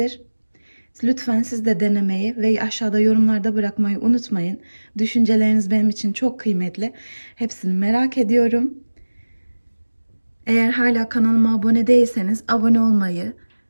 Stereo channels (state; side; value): inverted; both; correlation -1.00